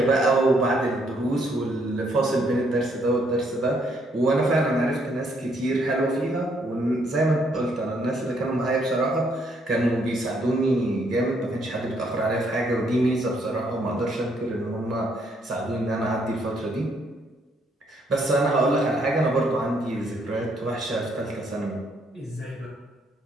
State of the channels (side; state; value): both; normal; correlation 0.71